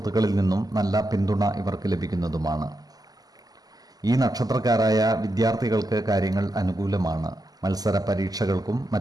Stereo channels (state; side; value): late; left; 0.18 ms